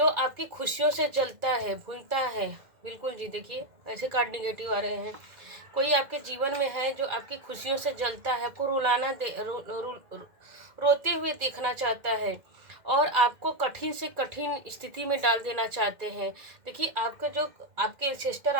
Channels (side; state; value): left; late; 2.1 ms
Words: आपकी खुशियों से जलता है, भूलता है। बिल्कुल जी, देखिए ऐसे कार्ड निगेटिव आ रहे हैं। कोई आपके जीवन में है जो आपकी खुशियों से जलता है, आपको रुलाना दे रोते हुए देखना चाहता है और आपको कठिन से कठिन स्थिति में डाल देना चाहते हैं। देखिए आपके सिस्टर